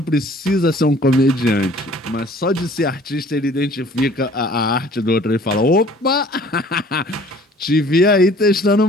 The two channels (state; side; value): normal; both; correlation 0.52